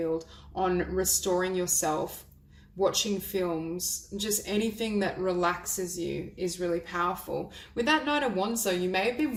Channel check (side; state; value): both; identical; correlation 1.00